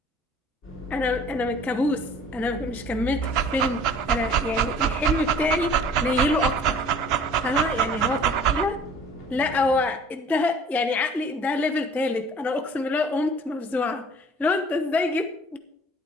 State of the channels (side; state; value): both; normal; correlation 0.50